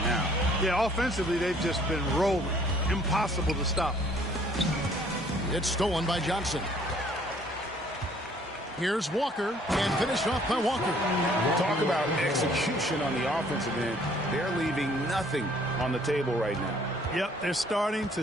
now. Yeah, offensively, they've just been rolling. Impossible to stop. It's stolen by Johnson. Here's Walker, and finished off by Walker. Talk about execution on the offensive end. They're leaving nothing on the table right now. Yep, they're starting to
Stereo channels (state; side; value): normal; both; correlation 0.59